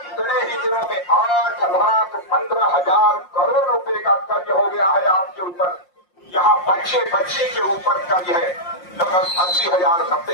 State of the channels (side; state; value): right; late; 5.6 ms